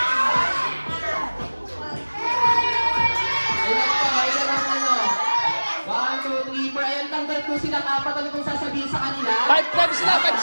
Kung sila apat, ano kung sasabihin sa kanila? 5 sila. Ano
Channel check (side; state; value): both; inverted; correlation -1.00